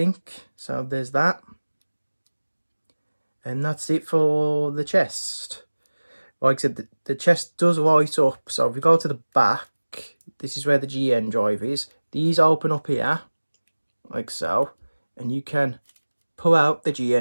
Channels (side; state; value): both; inverted; correlation -1.00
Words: So there's that. And that's it for the chest. Like I said, the chest does light up. So if we go to the back, this is where the GN drive is. These open up here, like so. And you can pull out the